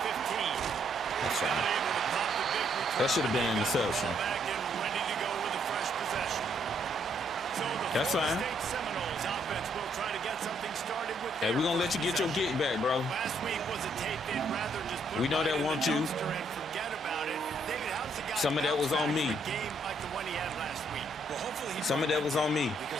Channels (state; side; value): normal; both; correlation 0.71